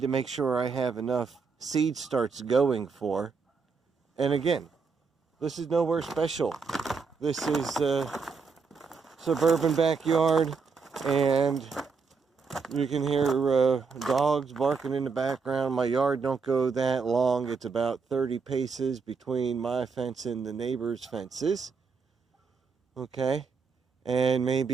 to make sure I have enough seed starts going for. And again, this is nowhere special. This is a suburban backyard, and you can hear dogs barking in the background. My yard don't go that long. It's about 30 paces between my fence and the neighbor's fences. Okay, and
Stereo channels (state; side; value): quieter; left; 5.1 dB